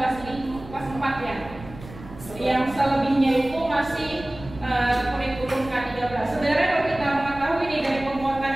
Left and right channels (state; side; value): noise; right; rumble, 16 dB below the sound